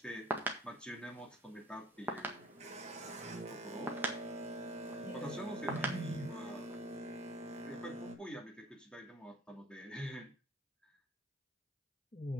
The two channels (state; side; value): normal; both; correlation 0.50